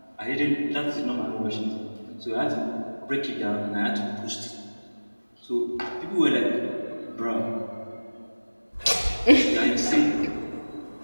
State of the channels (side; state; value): both; inverted; correlation -1.00